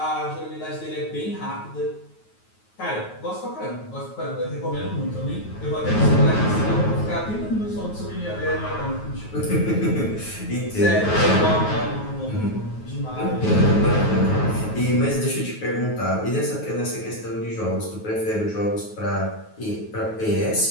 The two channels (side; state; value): right; late; 9.3 ms